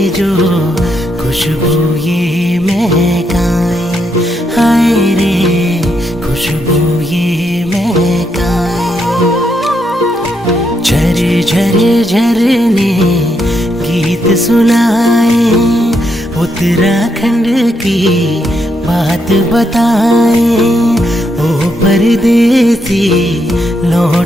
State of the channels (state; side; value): normal; both; correlation 0.79